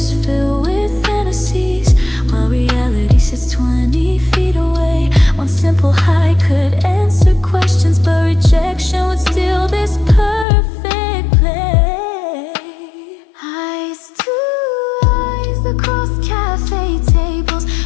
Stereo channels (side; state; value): right; drops out; at 10.5 s